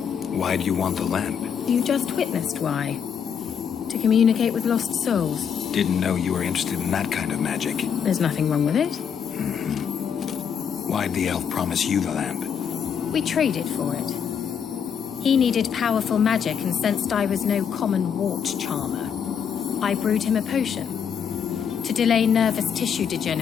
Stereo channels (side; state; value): right; quieter; 7.5 dB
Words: Why do you want the lamp? You just witnessed why. To communicate with lost souls. Didn't know you were interested in that kind of magic. There's nothing wrong with it. Why'd the elf promise you the lamp? We traded for it. He needed powerful magic and sensed I was no common wart charmer. I brewed him a potion. To delay nervous tissue